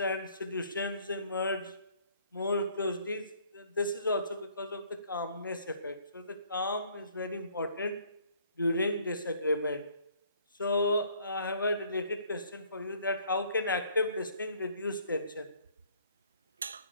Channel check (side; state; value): both; inverted; correlation -0.60